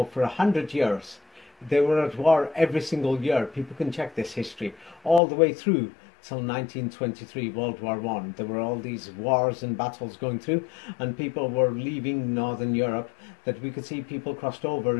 for 100 years. They were at war every single year. People can check this history all the way through till 1923, World War I. There were all these wars and battles going through, and people were leaving Northern Europe, that we could see people crossed over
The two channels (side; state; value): right; drops out; at 5.2 s